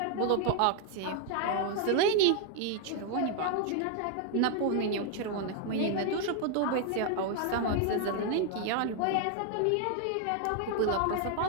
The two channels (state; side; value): different; both; correlation 0.00